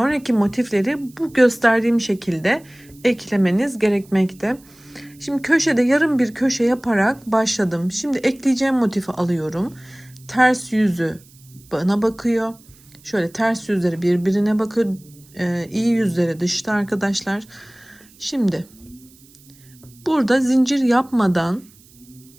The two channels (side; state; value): right; noise; hiss, 27 dB below the sound